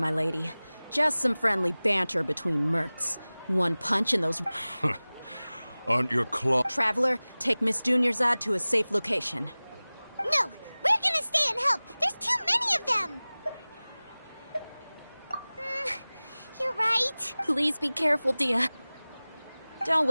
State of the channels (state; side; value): inverted; both; correlation -0.99